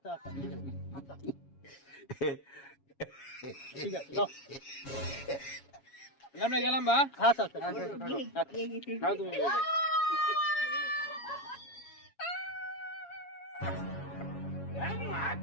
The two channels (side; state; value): right; late; 7.3 ms